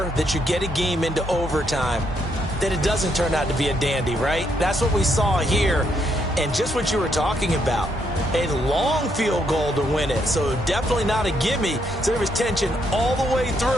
that you get a game into overtime that it doesn't turn out to be a dandy, right? That's what we saw here. And just what you were talking about, a long field goal to win it. So definitely not a gimme. So there was tension all the way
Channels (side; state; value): both; normal; correlation 0.75